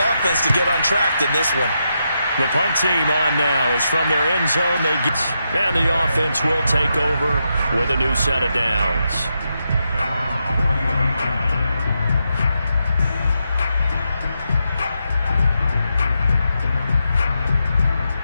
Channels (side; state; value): both; inverted; correlation -0.84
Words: to get untracked in this one. The punt team on now is from their end zone. And the offense will take over with a new set of downs.